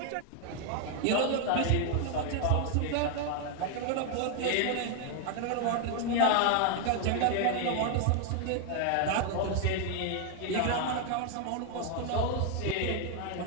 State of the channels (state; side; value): different; both; correlation 0.00